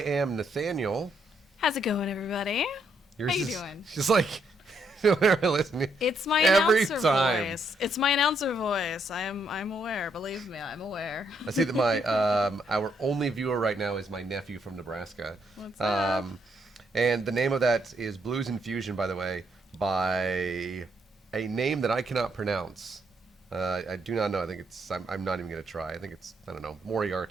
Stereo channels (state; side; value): normal; both; correlation 0.74